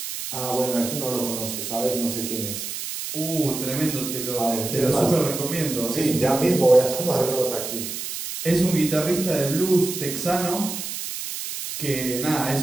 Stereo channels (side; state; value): right; noise; hiss, 6 dB below the sound